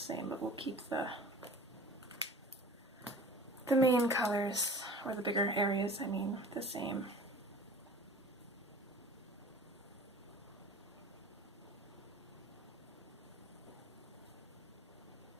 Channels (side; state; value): both; normal; correlation 0.42